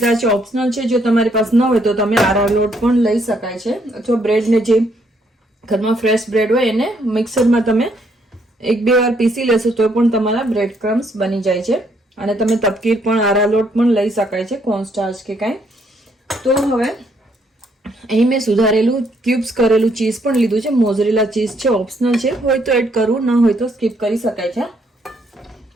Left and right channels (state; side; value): normal; both; correlation 0.71